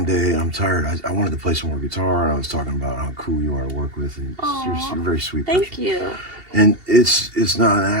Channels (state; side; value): late; left; 2.8 ms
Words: day, I'm tired, I wanted to play some more guitar. And I was talking about how cool you are to work with, and you're a very sweet person. Thank you. And it's not an